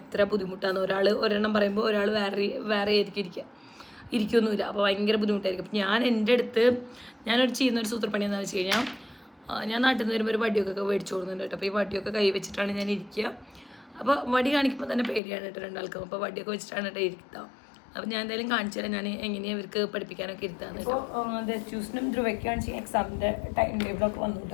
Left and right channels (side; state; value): right; drops out; at 15.2 s